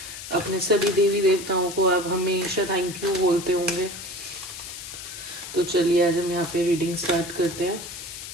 अपने सभी देवी देवताओं को आप हमेशा थैंक यू बोलते होंगे। तो चलिए आज हम यहाँ पे रीडिंग स्टार्ट करते हैं।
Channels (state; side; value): noise; left; hiss, 11 dB below the sound